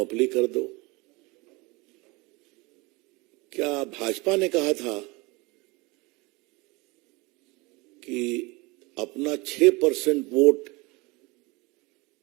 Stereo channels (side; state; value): left; quieter; 25.0 dB